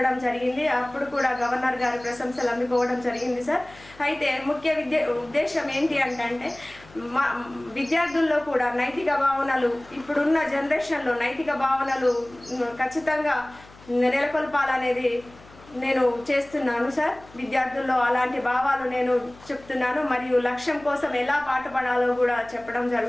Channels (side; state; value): left; noise; hum, 23 dB below the sound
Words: జరిగింది. అప్పుడు కూడా గవర్నర్ గారి ప్రశంసలు అందుకోవడం జరిగింది సార్. అయితే ముఖ్య ఉద్దేశం ఏంటి అంటే విద్యార్థుల్లో కూడా నైతిక భావనలు, ఇప్పుడున్న జనరేషన్లో నైతిక భావనలు ఖచ్చితంగా నెలకొల్పాలనేది నేను చేస్తున్నాను సార్. విద్యార్థుల్లో అలాంటి భావాలు నేను చెప్తున్నాను. మరియు లక్ష్యం కోసం ఎలా పాటుపడాలో కూడా చెప్పడం